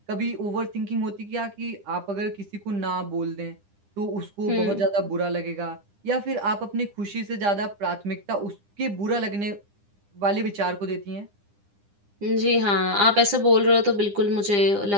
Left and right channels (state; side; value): late; left; 9.9 ms